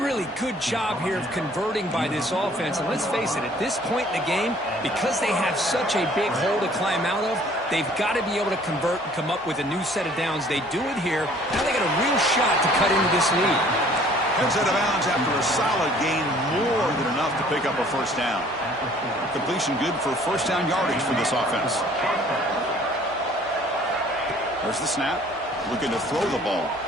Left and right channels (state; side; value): normal; both; correlation 0.55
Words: good job here of converting by this offense. And let's face it, at this point in the game, because they have such a big hole to climb out of, they've got to be able to convert and come up with a new set of downs. They do it here. Now they got a real shot to cut into this lead. Heads out of bounds after a solid gain, more than enough to pick up a first down. Completion good for first down yardage for this offense. There's the snap. Looking to throw the ball.